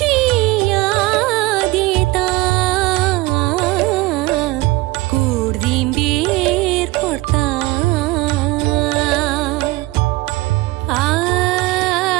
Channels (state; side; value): quieter; left; 20.3 dB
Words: याद येता कुडदिंडीर पडता